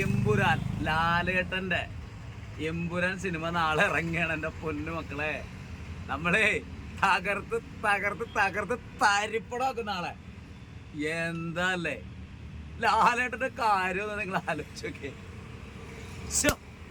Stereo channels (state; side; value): identical; both; correlation 1.00